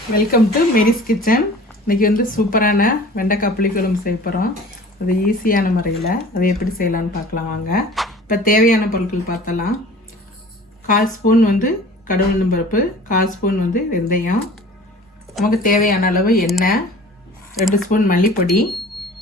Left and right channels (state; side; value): normal; both; correlation 0.44